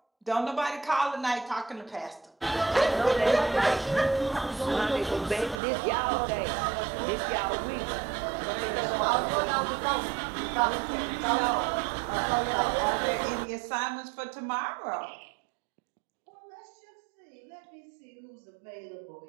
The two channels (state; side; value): drops out; left; at 5.6 s